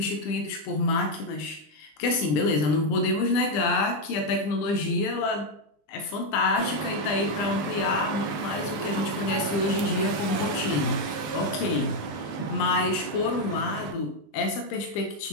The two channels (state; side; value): late; right; 20 ms